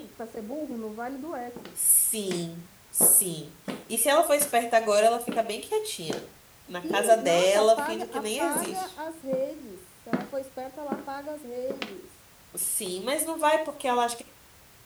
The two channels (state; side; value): identical; both; correlation 1.00